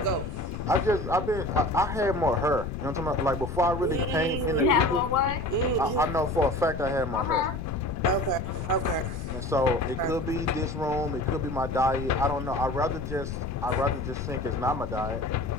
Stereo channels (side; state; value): left; noise; rumble, 7 dB below the sound